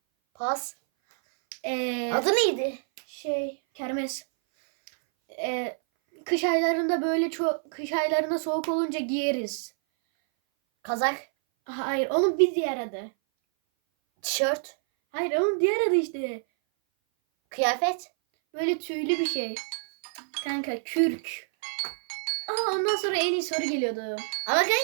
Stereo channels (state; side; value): silent; left; 58 dB below the other